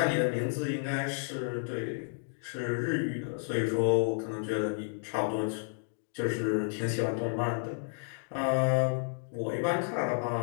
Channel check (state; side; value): silent; right; digital silence